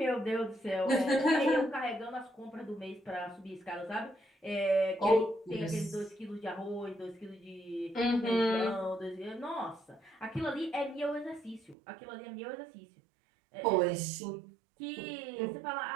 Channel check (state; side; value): drops out; left; at 11.8 s